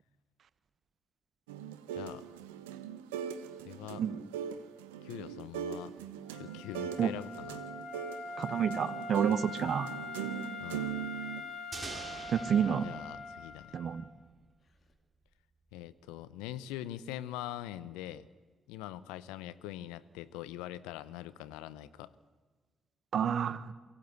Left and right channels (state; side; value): quieter; left; 4.7 dB